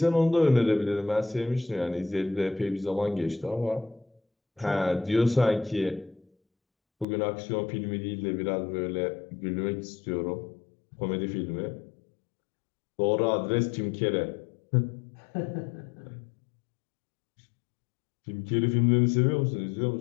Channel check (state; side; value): drops out; right; at 7.1 s